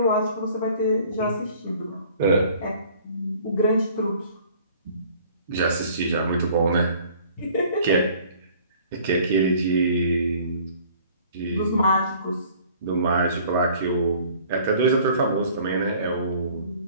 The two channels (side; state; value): both; inverted; correlation -0.53